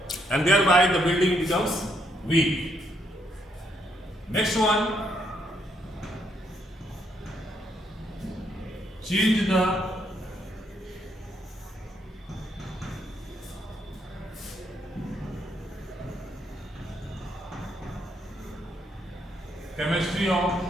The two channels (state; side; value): normal; both; correlation 0.74